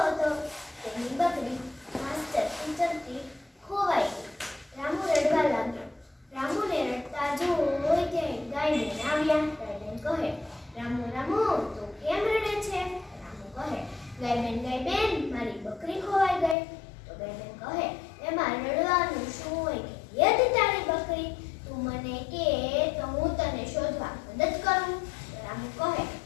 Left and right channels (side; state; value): right; drops out; at 16.6 s